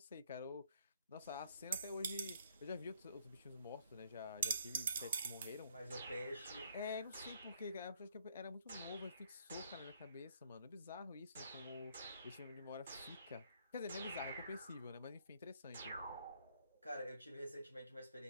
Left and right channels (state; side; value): inverted; both; correlation -0.67